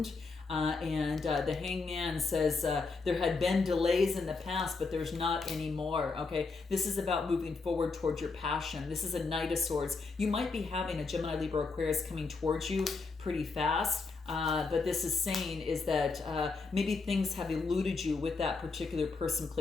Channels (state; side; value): quieter; right; 4.2 dB